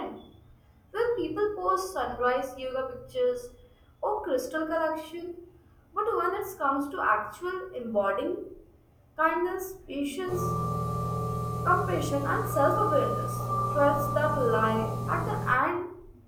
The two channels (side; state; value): both; identical; correlation 1.00